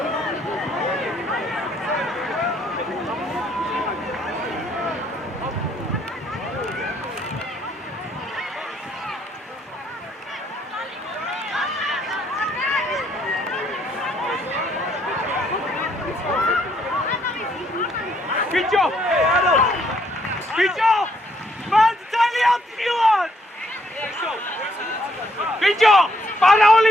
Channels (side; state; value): both; normal; correlation 0.69